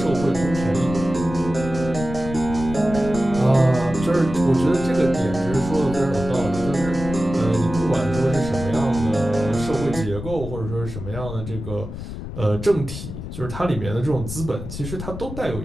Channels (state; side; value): noise; left; rumble, 9 dB below the sound